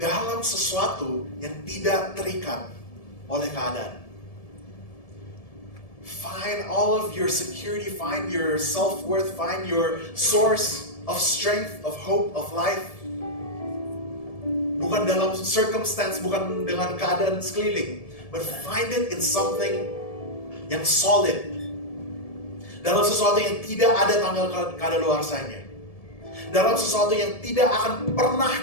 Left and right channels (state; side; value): late; right; 1.7 ms